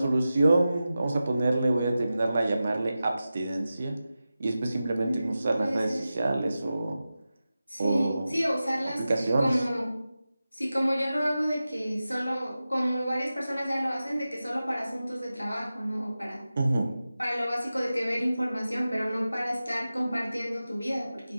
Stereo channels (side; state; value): both; inverted; correlation -0.94